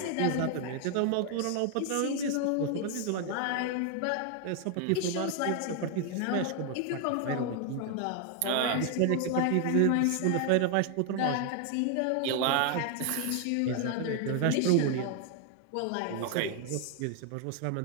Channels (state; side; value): different; both; correlation 0.00